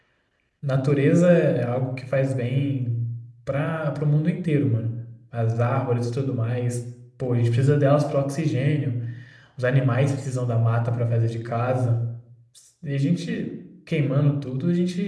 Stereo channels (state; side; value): identical; both; correlation 1.00